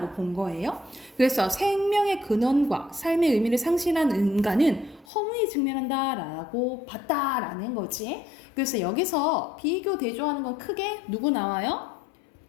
본 거예요. 그래서 생명의 근원과 삶의 의미를 상실한 인간은 허무에 직면한다라고 봤다라는 거지. 그래서 여기서 비교 대조하는 건 크게 누구 나와요?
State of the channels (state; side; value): drops out; right; at 5.1 s